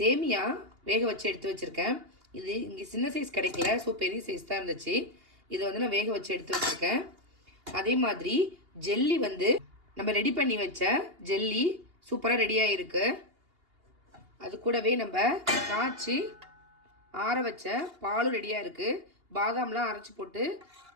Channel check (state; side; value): late; left; 2.8 ms